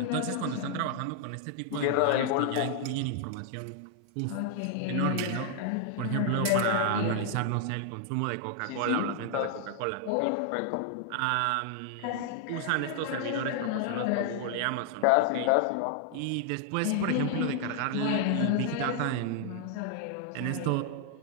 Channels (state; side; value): different; both; correlation 0.00